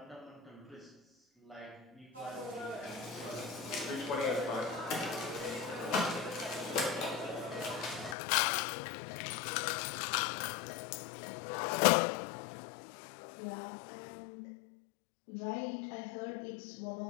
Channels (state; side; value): drops out; right; at 8.2 s